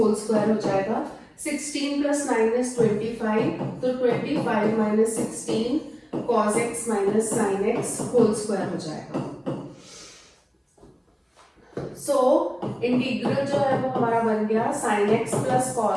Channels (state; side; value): identical; both; correlation 1.00